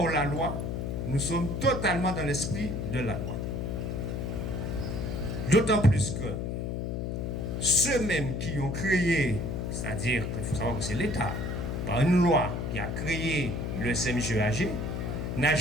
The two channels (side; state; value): left; noise; hum, 3 dB below the sound